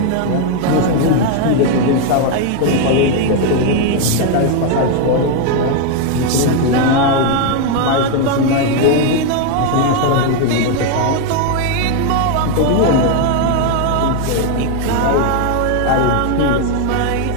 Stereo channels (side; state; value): both; different; correlation 0.01